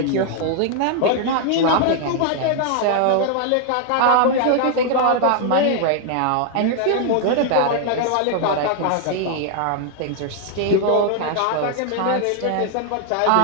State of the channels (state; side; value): different; both; correlation 0.00